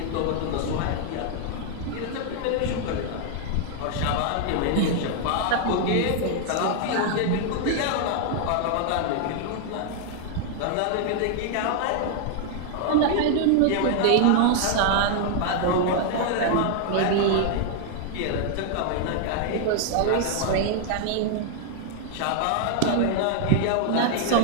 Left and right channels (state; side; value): different; both; correlation 0.00